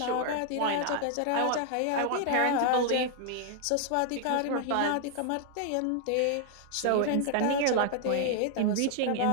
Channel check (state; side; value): different; both; correlation 0.00